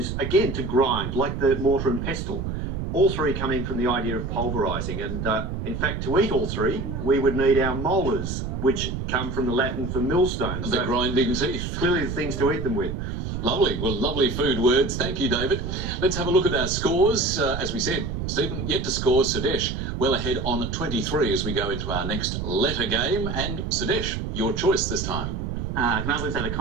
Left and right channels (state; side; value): noise; right; rumble, 4 dB below the sound